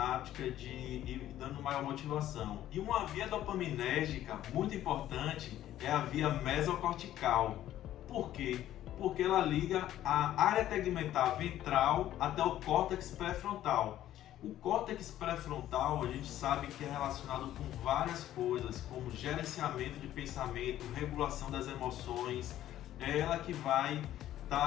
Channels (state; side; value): quieter; right; 12.8 dB